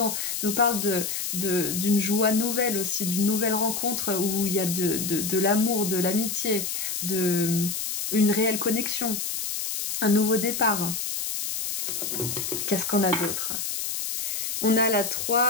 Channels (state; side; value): noise; left; hiss, 3 dB below the sound